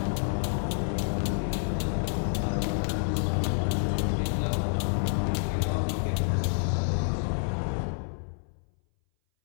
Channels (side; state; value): right; silent; 59 dB below the other